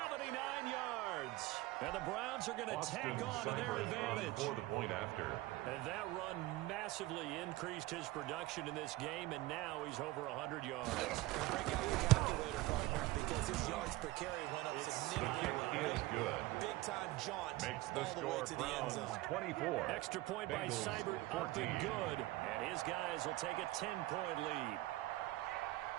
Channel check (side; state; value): left; quieter; 18.4 dB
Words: yards. And the Browns are going to tack on to their advantage. For the point after. And that run massively increased his production in this game, and now he's over 100 yards. Break out your calculator, partner, because his yards per carry went up The significantly. kick is good. Big-time jaunt Makes the all the way score to the end Browns zone. 24. Extra point by Bengals Seibert, up 14. and good. And his guys will take a 10-point lead.